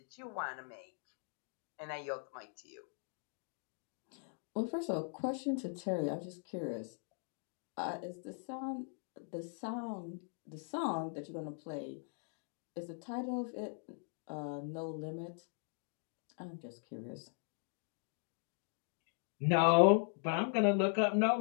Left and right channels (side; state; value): right; silent; 51 dB below the other